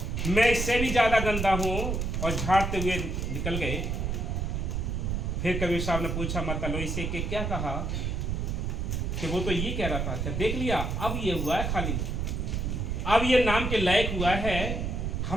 मैं इससे भी ज़्यादा गंदा हूँ। और झाड़ते हुए निकल गए। फिर कबीर साहब ने पूछा माता लोई से कि क्या कहा, कि वो तो ये कह रहा था कि देख लिया अब ये हुआ है खाली, अब ये नाम के लायक हुआ है।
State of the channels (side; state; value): right; noise; rumble, 1 dB below the sound